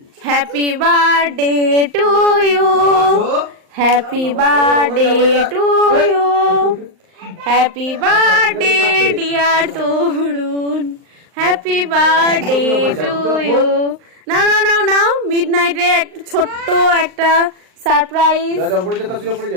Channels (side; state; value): left; late; 38 ms